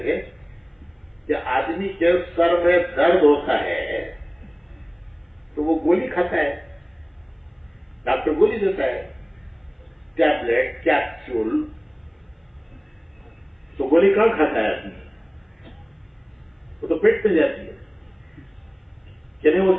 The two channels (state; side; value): identical; both; correlation 1.00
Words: کہ آدمی کے سر میں درد ہوتا ہے تو وہ گولی کھاتا ہے، ڈاکٹر گولی دیتا ہے، ٹیبلٹ، کیپسول. تو گولی کہاں کھاتا ہے آدمی؟ وہ تو پیٹ میں جاتی ہے. یعنی وہ